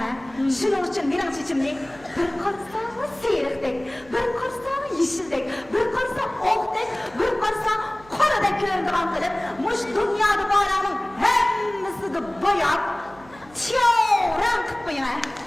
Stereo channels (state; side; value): noise; right; hum, 24 dB below the sound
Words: Şunun için benim çeçimni bir qarsa siyirikdek, bir qarsa yeşildek, bir qarsa okdek, bir qarsa qoradek ko'rindigan qilib, mush dunyoda borlarning hammasini boyap, tiyovran qilib qo'ying.